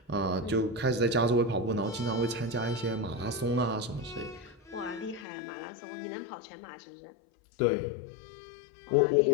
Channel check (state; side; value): drops out; right; at 5.2 s